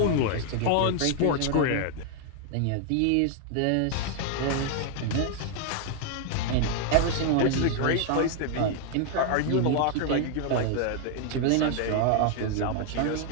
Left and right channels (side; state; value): both; different; correlation 0.00